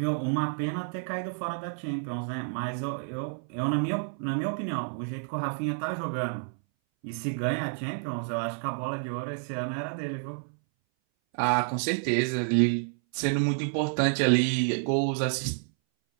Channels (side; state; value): left; silent; 58 dB below the other